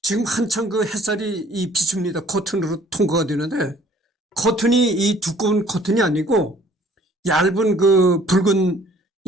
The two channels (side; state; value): both; normal; correlation 0.57